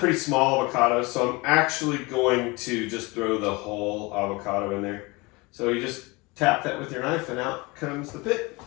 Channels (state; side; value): quieter; right; 25.1 dB